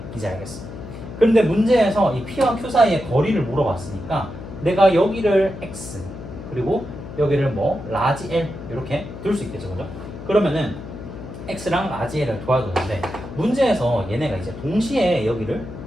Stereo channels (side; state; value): left; noise; hum, 12 dB below the sound